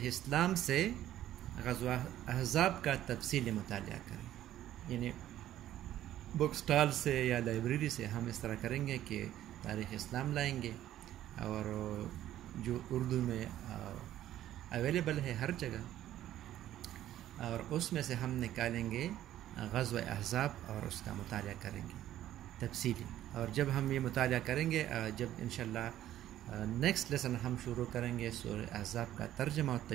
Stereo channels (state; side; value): quieter; left; 12.7 dB